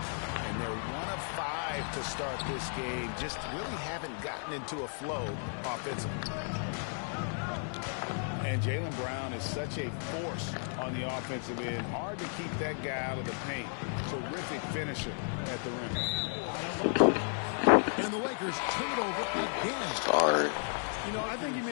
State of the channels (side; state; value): right; silent; 55 dB below the other